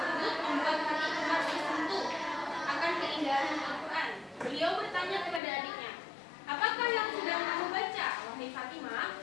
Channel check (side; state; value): right; drops out; at 5.4 s